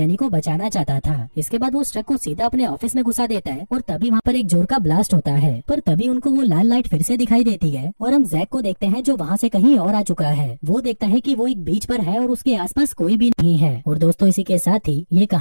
को बचाना चाहता था। इसके बाद वो उस ट्रक को सीधा अपने ऑफिस में घुसा देता है और तभी वहाँ पर एक जोर का ब्लास्ट होता है। पर तभी उनको वो लाल लाइट फिर से दिखाई देती है और हम जैक को देखते हैं, जो वहाँ से कहीं और आ चुका है। वो देखता है कि वो एक बीच पर है और उसके आसपास कोई भी नहीं है। और दोस्तों, इसी के साथ ही ये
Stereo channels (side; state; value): both; inverted; correlation -1.00